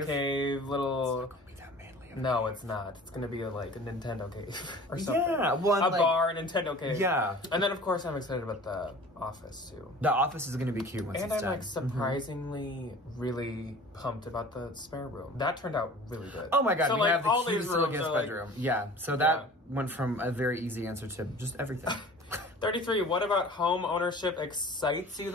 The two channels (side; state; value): both; normal; correlation 0.43